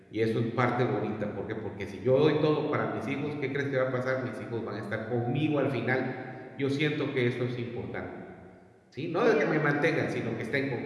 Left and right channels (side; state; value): both; identical; correlation 1.00